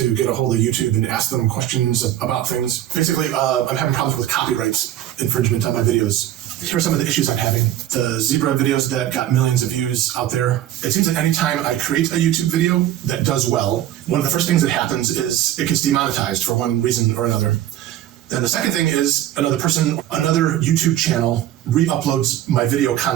get a hold of YouTube and ask them questions about things. Basically, I'm having problems with copyright infringement on my videos. Here are some of the issues I'm having. The zebra videos that got millions of views out there. It seems like anytime I create a YouTube video that does well, one of the first things that happens is it gets demonetized for one reason or another. Then the second thing is another YouTube channel re-uploads my video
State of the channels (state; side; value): quieter; left; 12.4 dB